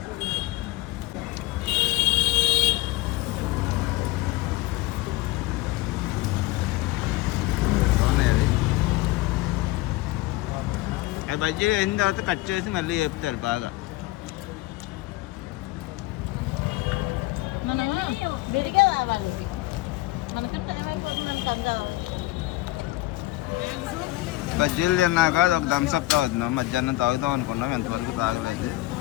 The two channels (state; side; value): quieter; right; 18.6 dB